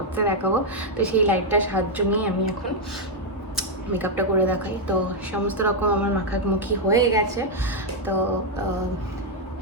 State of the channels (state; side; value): normal; both; correlation -0.02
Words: দেখাবো। তো সেই লাইটটার সাহায্য নিয়ে আমি এখন মেকআপটা করে দেখাই। তো সমস্ত রকম আমার মাখামুখি হয়ে গেছে। তো